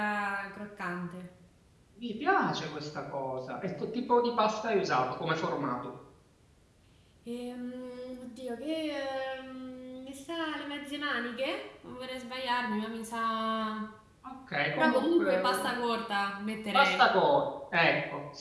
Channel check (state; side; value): identical; both; correlation 1.00